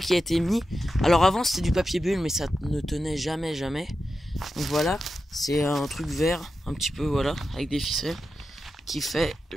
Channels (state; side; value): normal; both; correlation 0.90